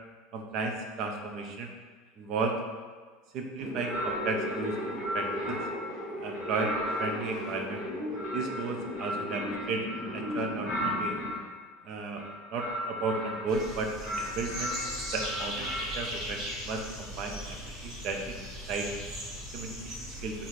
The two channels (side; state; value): both; normal; correlation 0.36